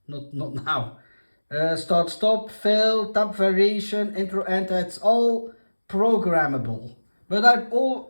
Not now. Start, stop, fill, tab variation, intro, enter. It's all programmable. But I've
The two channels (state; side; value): inverted; both; correlation -1.00